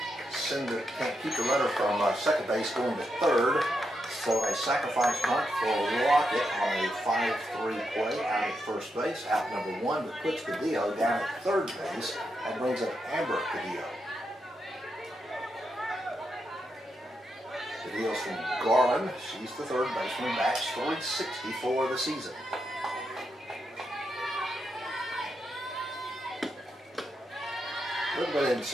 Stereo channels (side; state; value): both; normal; correlation 0.83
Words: keep the runner from second base going to third. So a sacrifice bunt for Lockett on a 5-3 play out at first base. Out number 1, but puts Cadillo down at third base. That brings up Amber Cadillo. Cadillo's from Garland. She's the third baseman. Bats .360 for the season. A little bit